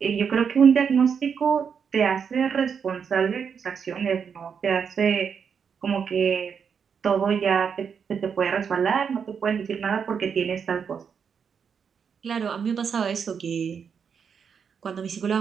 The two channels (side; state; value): left; quieter; 6.8 dB